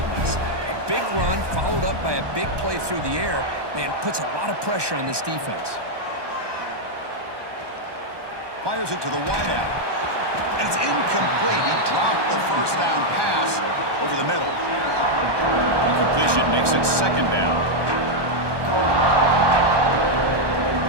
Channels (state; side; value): late; left; 1.2 ms